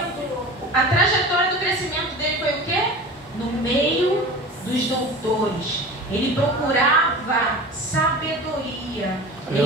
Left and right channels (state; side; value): normal; both; correlation 0.35